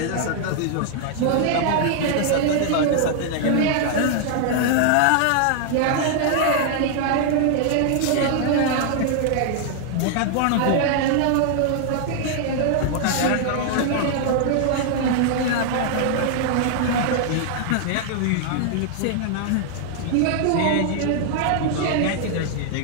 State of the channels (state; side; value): different; both; correlation 0.00